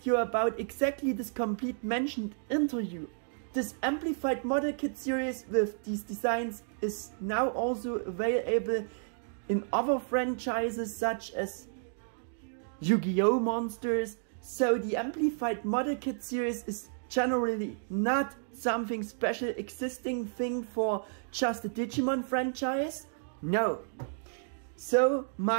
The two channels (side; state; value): left; silent; digital silence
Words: about exactly this complete mentioned interview. This Amplified model kit series with these designs is now also available in other franchises such as Yu-Gi-Oh! Monsters, so the Amplified Model Kit series is generally not something special existing thing for just the Digimon franchise. No. So